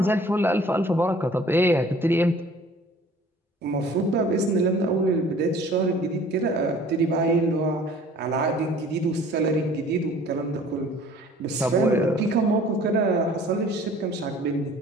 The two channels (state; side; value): normal; both; correlation 0.51